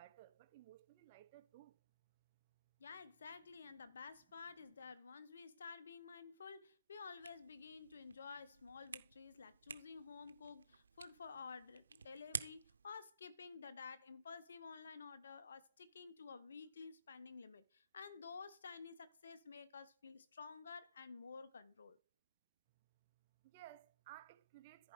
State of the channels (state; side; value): inverted; both; correlation -0.80